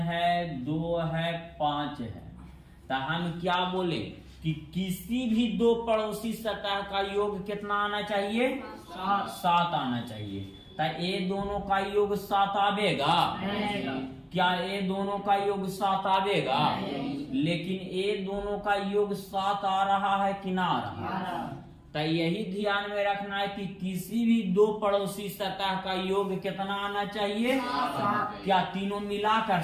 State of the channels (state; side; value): identical; both; correlation 1.00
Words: 2 है, 5 है, तो हम क्या बोले कि किसी भी दो पड़ोसी सतह का योग कितना आना चाहिए? 7 आना चाहिए। तो ये दोनों का योग 7 आवेगा? क्या ये दोनों का योग 7 आवेगा? लेकिन ये दोनों का योग 7 आ रहा है कि ना आ रहा है? तो यही ध्यान में रखना है कि किसी भी दो पड़ोसी सतह का योग कितना आना चाहिए? क्या तीनों मिलाकर